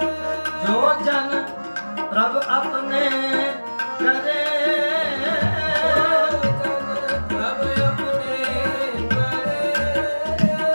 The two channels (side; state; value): both; inverted; correlation -1.00